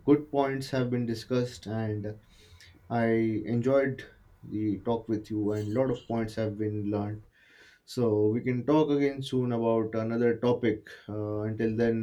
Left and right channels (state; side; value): identical; both; correlation 1.00